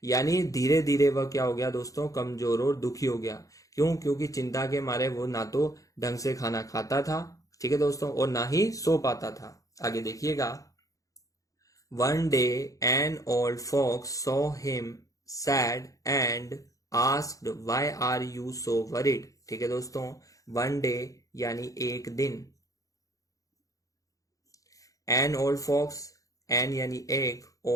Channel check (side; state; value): right; late; 0.16 ms